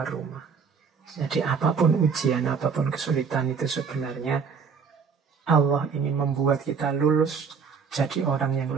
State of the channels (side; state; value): left; quieter; 5.9 dB